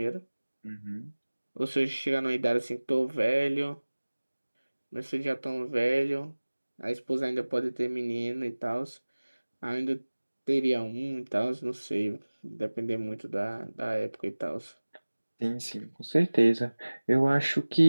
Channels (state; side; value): inverted; both; correlation -1.00